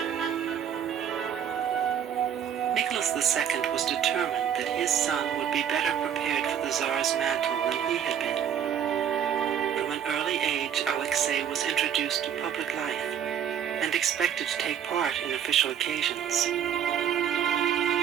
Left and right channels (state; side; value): quieter; left; 8.8 dB